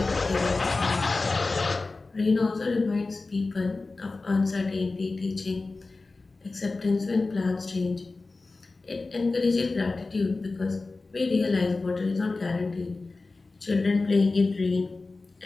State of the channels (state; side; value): quieter; right; 3.6 dB